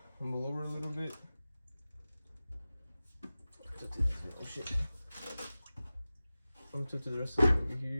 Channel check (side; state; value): both; inverted; correlation -0.97